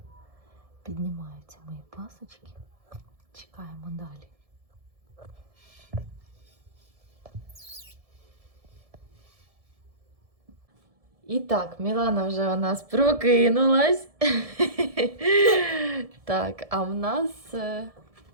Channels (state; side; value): late; left; 1.7 ms